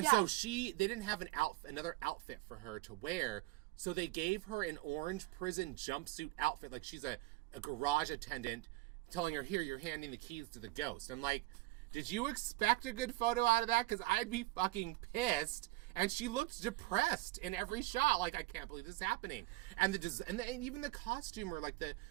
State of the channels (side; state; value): left; quieter; 19.0 dB